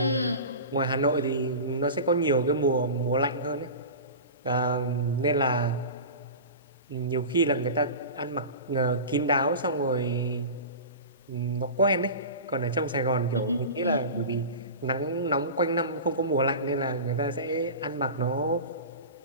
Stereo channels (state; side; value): inverted; both; correlation -0.31